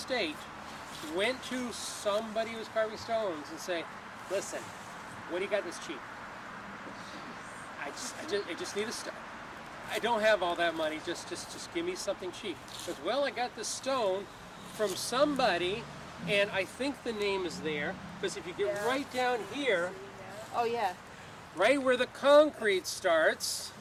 went to somebody who was carving stones and say, listen, what do you got that's cheap? I just need a stone. I don't have all that money. Just give me something cheap. Because, well, I got this stone from somebody, and I think the name is there. Because if you get right down here, Oh yeah. right where the concrete starts,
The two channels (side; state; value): both; identical; correlation 1.00